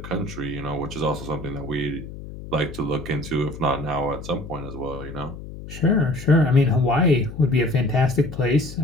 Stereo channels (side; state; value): left; noise; hum, 12 dB below the sound